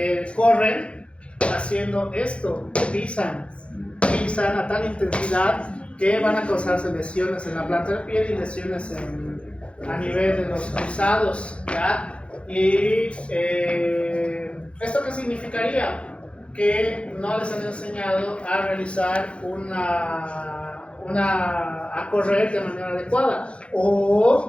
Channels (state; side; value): late; right; 0.060 ms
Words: corren haciendo esto, pisan a tal intensidad que van a causarse lesiones en la planta del pie y lesiones a nivel de los cruzados, ¿ya? Y ¿esto qué significaría? Que no les han enseñado a realizar a correr de manera adecuada.